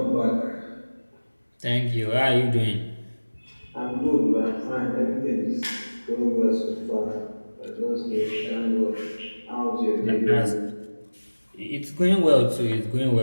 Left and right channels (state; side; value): inverted; both; correlation -1.00